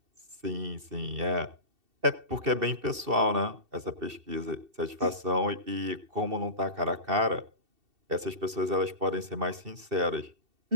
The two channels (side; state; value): left; late; 2.7 ms